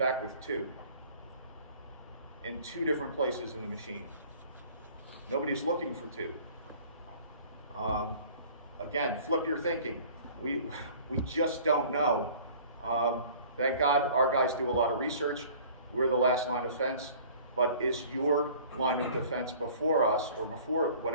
with two in two different places in the machine. Nobody's looking for two. Again, flip your thinking. We just don't know. Thank God our guys do a lot of research. We're the last line of defense. But is your line of defense before us, or before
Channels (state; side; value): inverted; both; correlation -0.49